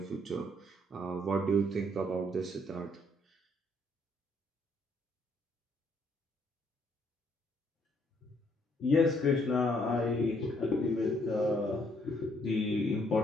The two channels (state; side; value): normal; both; correlation 0.68